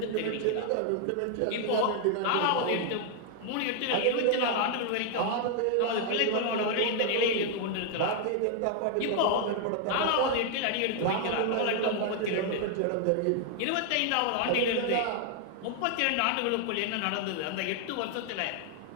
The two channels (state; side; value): different; both; correlation 0.00